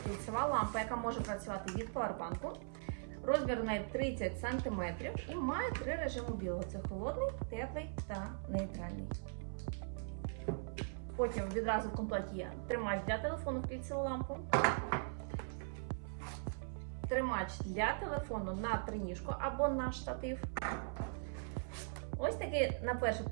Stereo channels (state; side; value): silent; left; 51 dB below the other